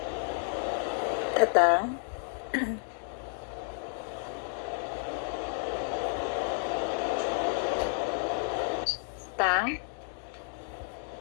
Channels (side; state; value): right; silent; 57 dB below the other